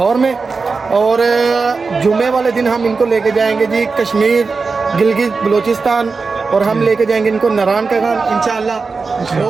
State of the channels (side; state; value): left; quieter; 4.5 dB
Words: में और जुम्मे वाले दिन हम इनको लेके जाएंगे जी कश्मीर गिलगित बलूचिस्तान और हम लेके जाएंगे इनको नारायण का गान इंशाल्लाह